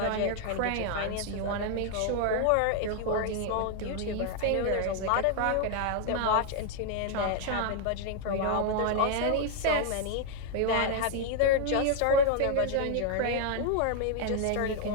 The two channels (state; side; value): different; both; correlation 0.00